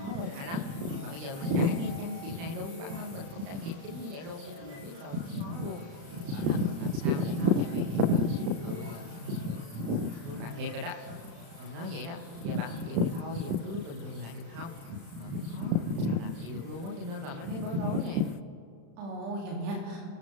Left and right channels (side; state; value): left; late; 35 ms